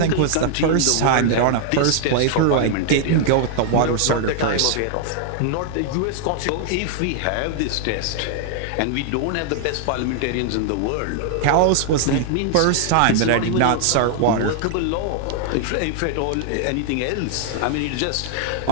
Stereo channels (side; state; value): both; different; correlation 0.00